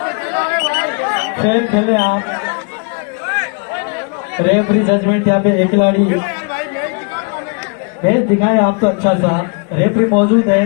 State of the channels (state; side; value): quieter; right; 34.1 dB